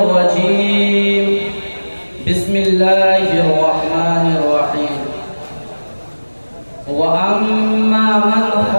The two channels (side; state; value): both; inverted; correlation -1.00